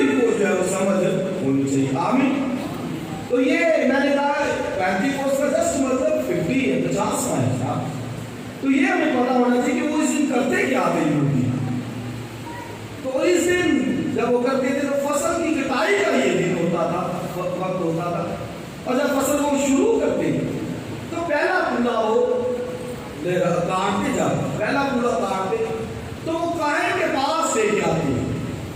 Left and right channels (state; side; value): identical; both; correlation 1.00